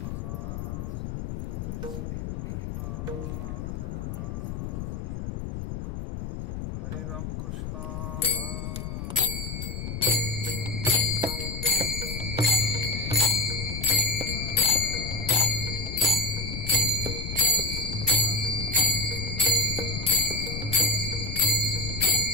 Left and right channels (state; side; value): noise; left; rumble, 5 dB below the sound